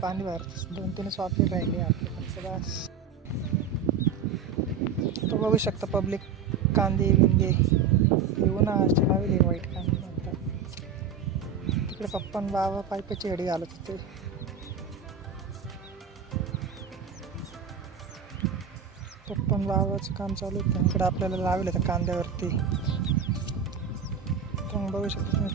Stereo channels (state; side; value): quieter; left; 6.5 dB